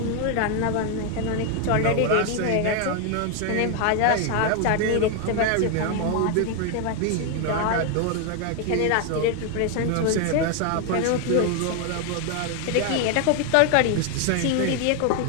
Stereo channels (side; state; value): both; different; correlation 0.01